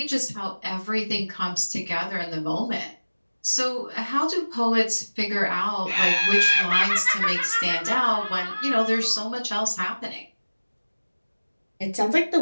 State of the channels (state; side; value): inverted; both; correlation -1.00